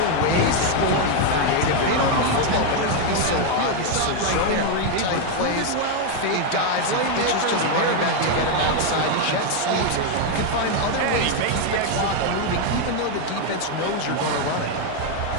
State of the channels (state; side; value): different; both; correlation 0.01